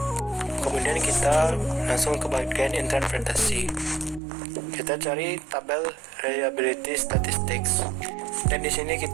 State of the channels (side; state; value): left; drops out; at 4.2 s